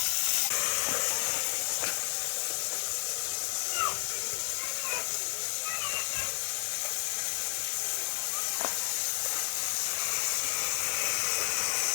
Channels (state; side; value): silent; right; 57 dB below the other